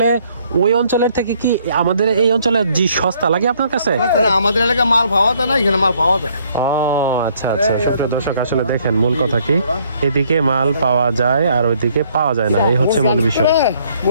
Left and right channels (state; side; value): inverted; both; correlation -0.65